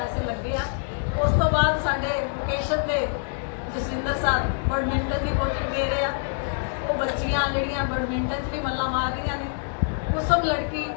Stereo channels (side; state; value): right; silent; 61 dB below the other